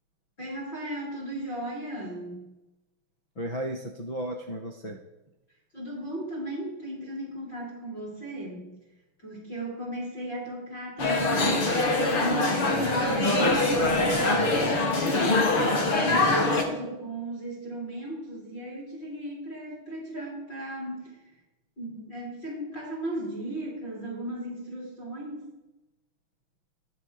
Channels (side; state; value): right; late; 6.8 ms